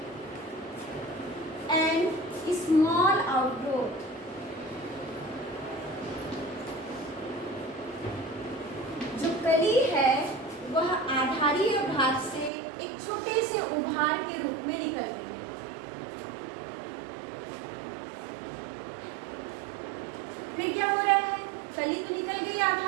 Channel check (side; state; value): left; drops out; at 12.5 s